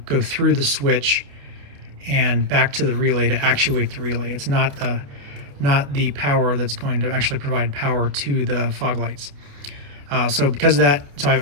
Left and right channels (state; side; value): late; left; 28 ms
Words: go through the switch and back to the relay to actuate the relay. It's not the power that's going to actually provide power to the fog lights. So because of that, so